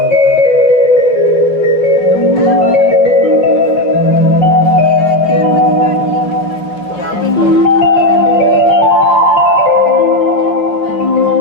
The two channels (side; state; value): right; late; 5.6 ms